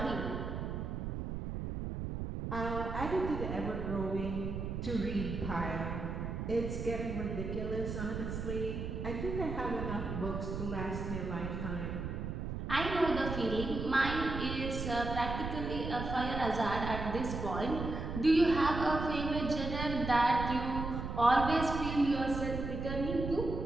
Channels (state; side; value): noise; right; rumble, 4 dB below the sound